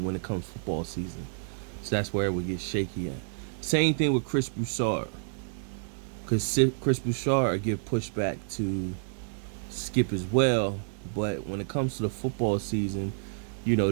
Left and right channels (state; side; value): silent; left; 58 dB below the other